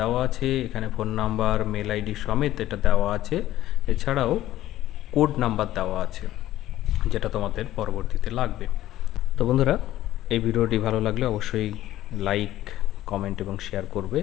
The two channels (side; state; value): right; quieter; 14.1 dB